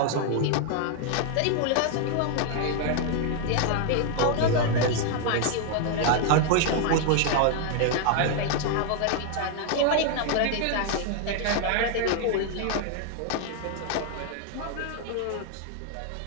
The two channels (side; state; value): both; different; correlation 0.00